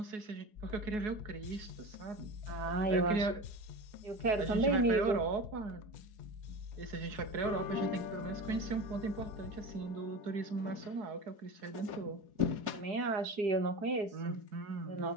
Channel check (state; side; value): late; left; 4.7 ms